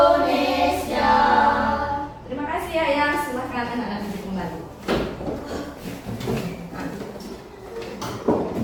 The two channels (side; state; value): both; identical; correlation 1.00